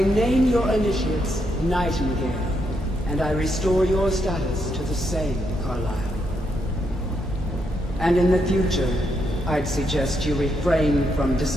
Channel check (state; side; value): normal; both; correlation 0.79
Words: name your initiates Nightingale, and I restore your status to the same, Carlisle. And in the future, I'd suggest you refrain from